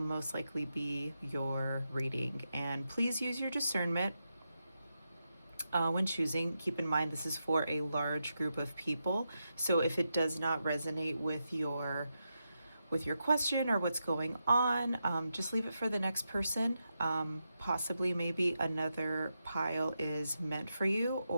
likely be your reading. And please use your discernment when choosing. Keep in mind this is for a large group of people, so if it does not resonate with your question or what's going on, just leave it for the next person. Possibly maybe another pile is meant for you,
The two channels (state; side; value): inverted; both; correlation -0.87